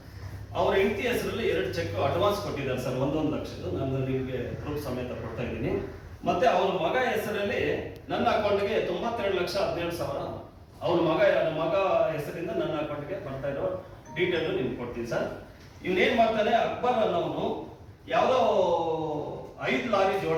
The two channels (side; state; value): both; identical; correlation 1.00